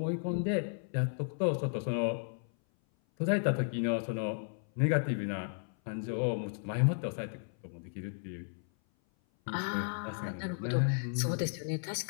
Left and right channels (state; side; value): silent; right; 55 dB below the other